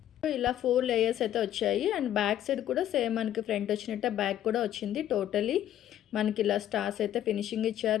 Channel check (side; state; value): right; quieter; 11.6 dB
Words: ఇలా 4 లేయర్స్ అయితే వచ్చాయి. అండ్ బ్యాక్ సైడ్ కూడా సేమ్ మనకి ఫ్రంట్ వచ్చినట్టే బ్యాక్ కూడా వచ్చింది. టోటలీ మనకి ఇలా స్టార్స్ అయితే ఫినిషింగ్